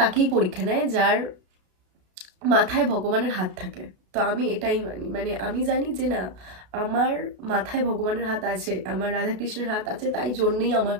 পরীক্ষা নেয় যার মাথায় ভগবানের হাত থাকে। তো আমি এটাই মানি, মানে আমি জানি যে না, আমার মাথায় ভগবানের হাত আছে, আমার রাধাকৃষ্ণের হাত আছে, তাই জন্যই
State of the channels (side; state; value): left; late; 32 ms